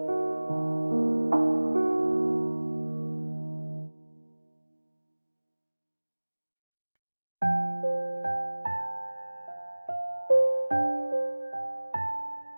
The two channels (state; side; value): inverted; both; correlation -1.00